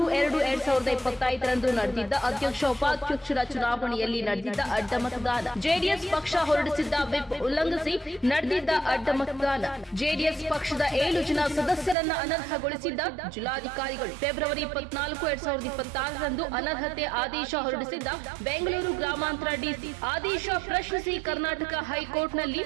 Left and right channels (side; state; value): left; drops out; at 12.0 s